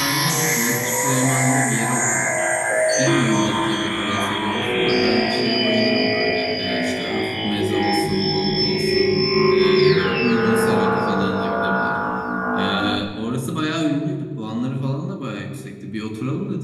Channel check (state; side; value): identical; both; correlation 1.00